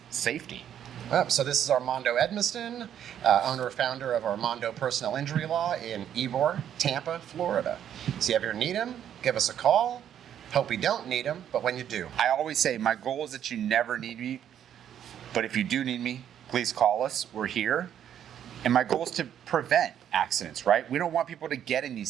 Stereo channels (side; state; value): left; quieter; 9.8 dB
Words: safety. So this is Armando Edmiston, owner and founder of Armando Personal Injury Law in Ybor, Tampa, Florida. So if you ever need him, give us a call. Hope you don't need him, but when you do. I always say my goal is that you never need me, but if you do need me, please call us. We're here. And my goal is to prevent accidents, right? We don't want people to get in